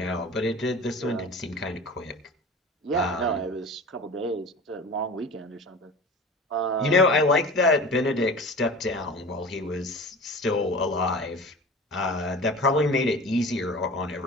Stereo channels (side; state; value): both; normal; correlation 0.37